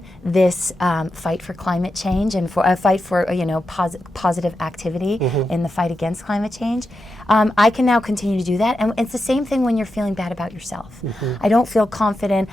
this fight for climate change and for a fight for positive activity in the fight against climate change. I can now continue to do that, and it's the same thing when you're feeling bad about yourself. I don't feel confident.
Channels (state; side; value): normal; both; correlation 0.88